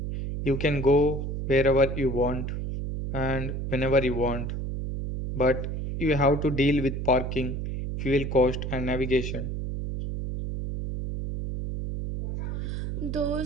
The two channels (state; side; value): noise; right; hum, 4 dB below the sound